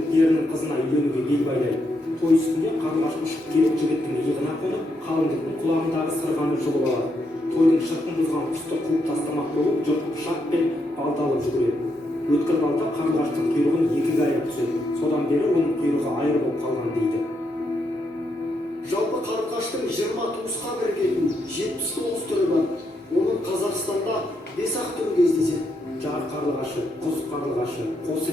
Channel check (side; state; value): both; normal; correlation 0.80